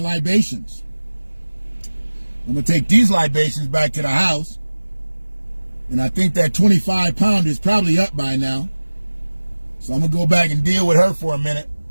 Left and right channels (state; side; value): inverted; both; correlation -1.00